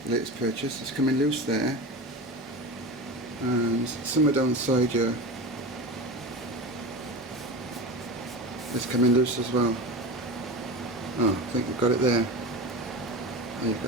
Latest purchase. It's coming loose there, and somewhere down the side here it's coming loose as well. Oh, I think we've got it there. There you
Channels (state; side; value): normal; both; correlation 0.27